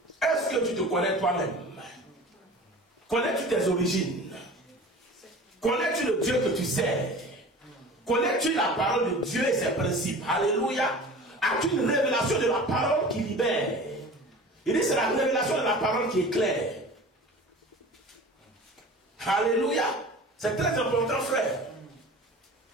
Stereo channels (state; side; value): normal; both; correlation 0.39